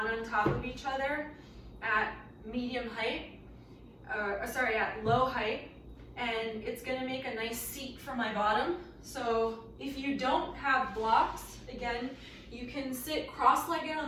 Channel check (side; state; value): both; identical; correlation 1.00